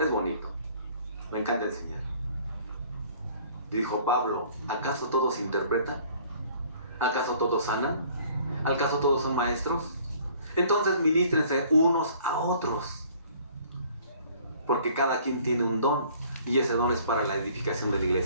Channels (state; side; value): inverted; both; correlation -0.55